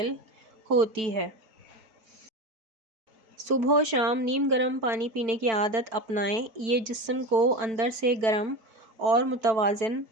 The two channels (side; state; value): left; late; 4.5 ms